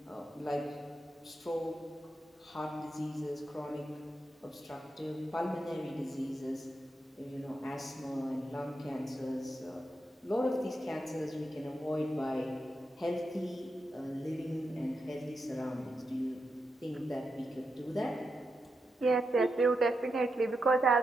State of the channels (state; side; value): normal; both; correlation 0.86